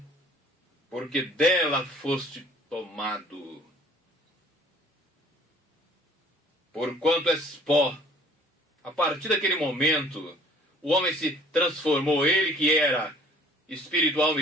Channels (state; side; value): normal; both; correlation 0.54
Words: Porque dela foste tomado. Porquanto és pó. A partir daquele momento, o homem se transformou. Ele que era espírito, alma